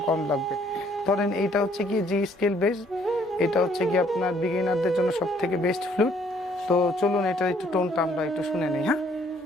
কম লাগবে। ধরেন এইটা হচ্ছে গিয়ে জি স্কেল বেস, এটা হচ্ছে গিয়ে আপনার বিগিনারদের জন্য সব থেকে বেস্ট ফ্লুট। তো চলুন এটা একটু টোনটা আমরা একটু শুনে নিই। হ্যাঁ,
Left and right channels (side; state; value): both; normal; correlation 0.63